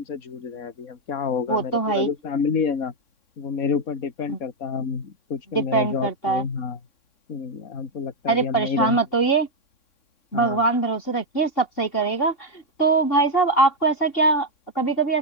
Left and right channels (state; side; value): late; right; 3.6 ms